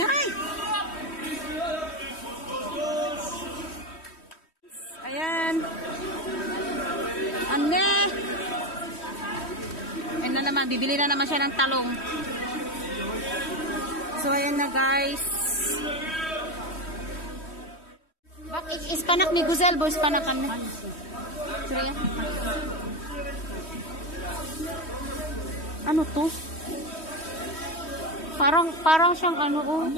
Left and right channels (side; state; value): right; late; 3.1 ms